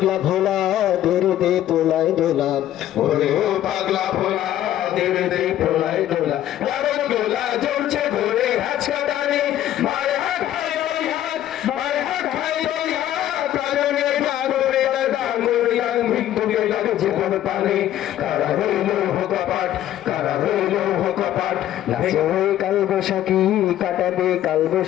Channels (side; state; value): right; quieter; 12.4 dB